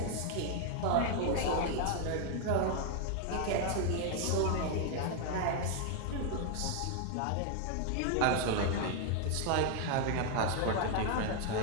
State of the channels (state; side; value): different; both; correlation 0.00